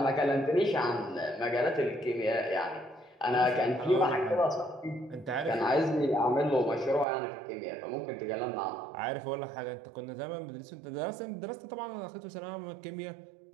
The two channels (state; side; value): drops out; left; at 7.1 s